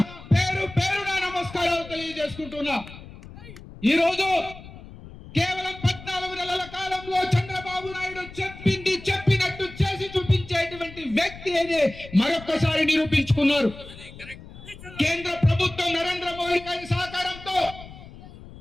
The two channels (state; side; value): noise; left; rumble, 16 dB below the sound